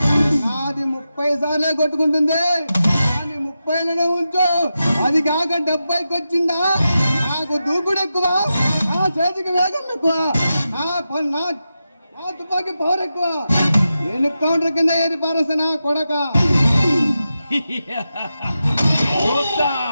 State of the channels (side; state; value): both; inverted; correlation -0.90